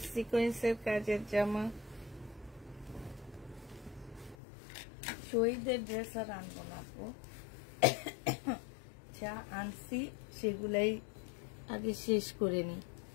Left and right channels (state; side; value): drops out; right; at 4.4 s